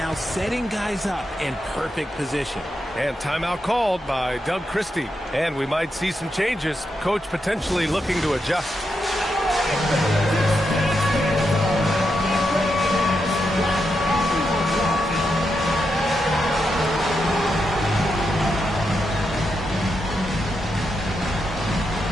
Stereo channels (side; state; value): both; normal; correlation 0.84